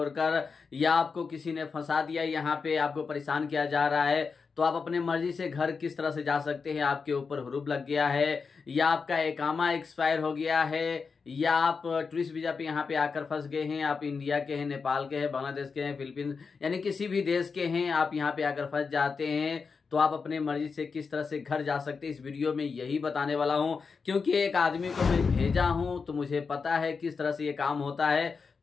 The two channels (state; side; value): quieter; right; 5.1 dB